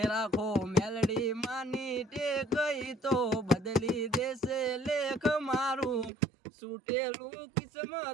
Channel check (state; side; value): drops out; left; at 6.1 s